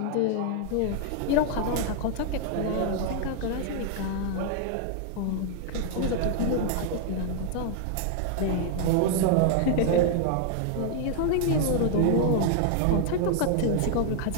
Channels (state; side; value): different; both; correlation 0.00